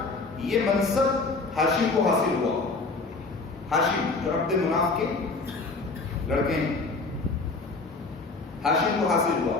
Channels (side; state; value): right; quieter; 3.8 dB